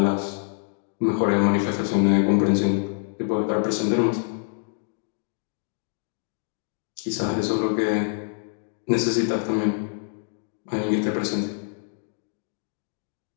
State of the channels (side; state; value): right; silent; digital silence